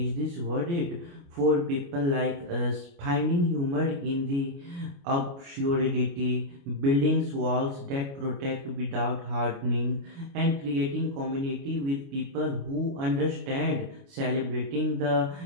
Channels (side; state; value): left; late; 29 ms